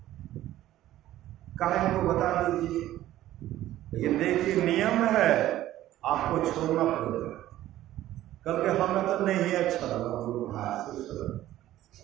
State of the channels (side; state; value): left; quieter; 14.0 dB